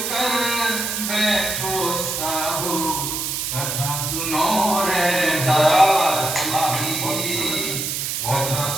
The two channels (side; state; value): right; noise; hiss, 2 dB below the sound